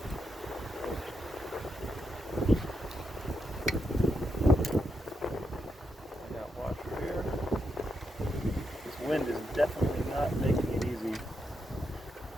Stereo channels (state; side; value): normal; both; correlation 0.83